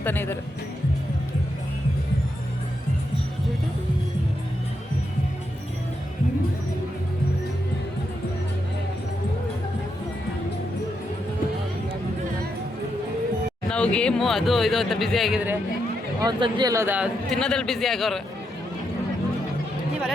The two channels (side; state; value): both; normal; correlation 0.82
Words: ಇದ್ದಾರೆ. ನಾವು ಗೇಮು ಅದು ಇದು ಅಂತ ಬ್ಯುಸಿ ಆಗಿದ್ರೆ ಅವ್ನು ಸಂಜೆ ಎಲ್ಲೋದ ತಿನ್ನೋದ್ರಲ್ಲಿ ಬ್ಯುಸಿ ಆಗೋರು.